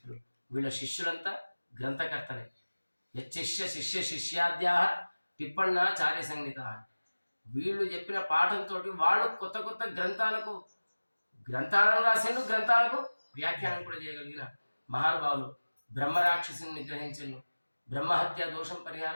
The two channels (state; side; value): inverted; both; correlation -1.00